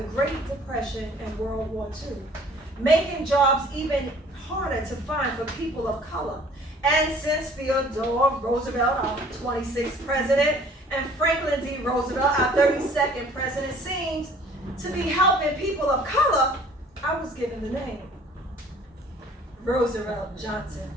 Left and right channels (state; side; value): normal; both; correlation 0.53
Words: Great Depression and World War II, making jobs even harder to find for people of color. And since Theodore Roosevelt, our 26th president, and Franklin D. Roosevelt, our 32nd president, seems to be helping people of color, I was given the name Roosevelt Johnson